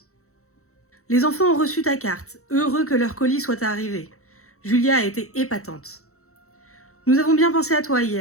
Les enfants ont reçu ta carte, heureux que leur colis soit arrivé. Julia a été épatante. Nous avons bien pensé à toi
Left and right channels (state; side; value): late; right; 0.64 ms